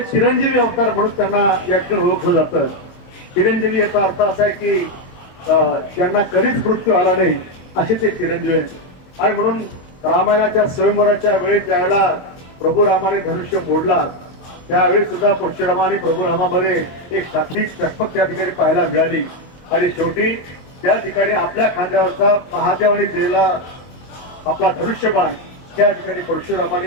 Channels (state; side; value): late; right; 22 ms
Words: चिरंजीवी अवतार म्हणून त्यांना या ठिकाणी ओळखलं जातं. चिरंजीवी याचा अर्थ असा आहे की ज्यांना कधीच मृत्यू आला नाही असे ते चिरंजीवी आहेत. आणि म्हणून रामायणाच्या स्वयंवराच्या वेळेस ज्यावेळेला प्रभू रामाने धनुष्य मोडला त्यावेळेस सुद्धा परशुरामाने प्रभू रामामध्ये एक शाब्दिक चकमक त्या ठिकाणी पाहायला मिळाली. आणि शेवटी त्या ठिकाणी आपल्या खांद्यावरचा महादेवाने दिलेला आपला धनुष्यबाण त्या ठिकाणी